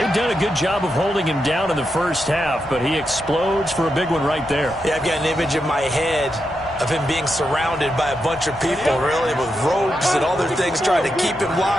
done a good job of holding him down in the first half, but he explodes for a big one right there. Yeah, I've got an image in my head of him being surrounded by a bunch of people, really, with ropes and other things trying to keep him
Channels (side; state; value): both; normal; correlation 0.85